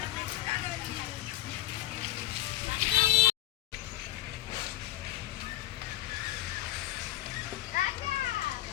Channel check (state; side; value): quieter; right; 14.7 dB